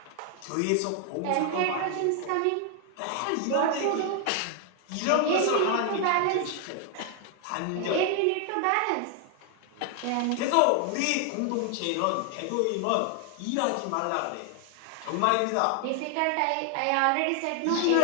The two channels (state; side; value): different; both; correlation 0.00